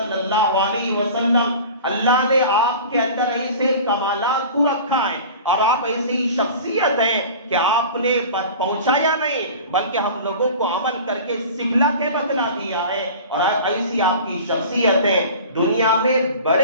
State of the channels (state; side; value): inverted; both; correlation -0.39